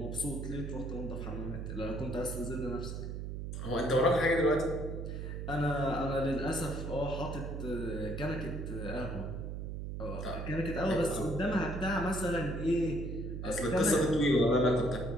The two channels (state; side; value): noise; right; hum, 5 dB below the sound